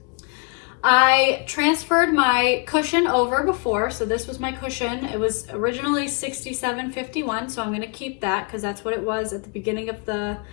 I transferred my cushion over before. So this was my cushion. It was originally $67.51. So I'm going to keep that because that's what it was at the beginning of the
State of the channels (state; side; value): quieter; right; 32.7 dB